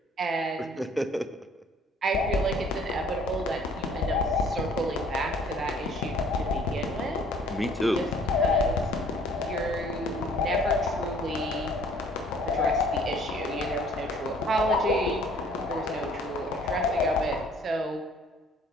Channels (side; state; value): both; normal; correlation 0.56